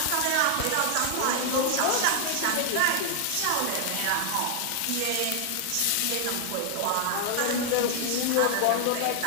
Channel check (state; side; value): different; both; correlation 0.00